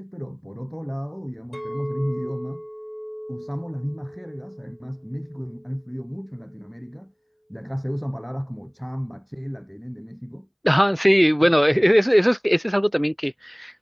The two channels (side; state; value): both; identical; correlation 1.00